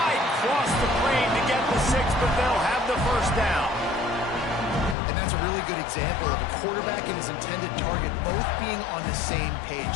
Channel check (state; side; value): drops out; right; at 5.0 s